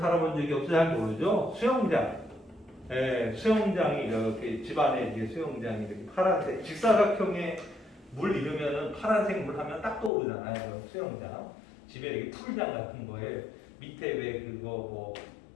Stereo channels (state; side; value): drops out; right; at 10.1 s